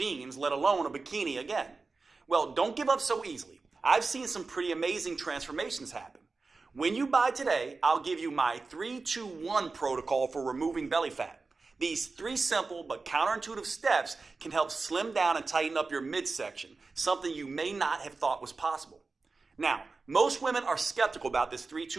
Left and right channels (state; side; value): quieter; left; 4.0 dB